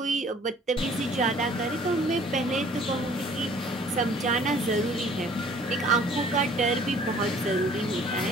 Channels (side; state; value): both; normal; correlation 0.54